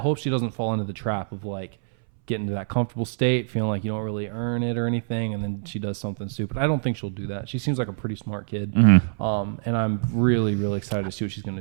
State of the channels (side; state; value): left; silent; 62 dB below the other